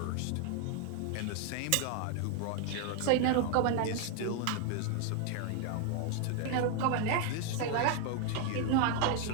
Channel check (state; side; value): different; both; correlation 0.00